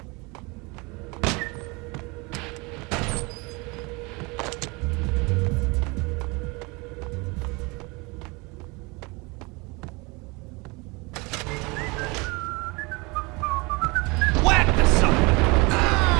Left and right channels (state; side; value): quieter; left; 26.9 dB